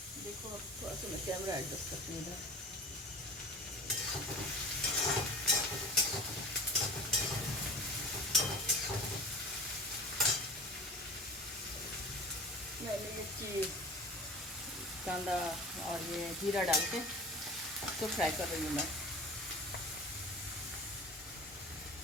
देखो अब थोड़ा सा मैं कैमरा एडजस्ट करती हूँ इधर। मैंने मिर्ची, कांदा और ये जीरा डाल के तो फ्राई कर रही हूँ मैं।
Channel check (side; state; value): both; normal; correlation 0.37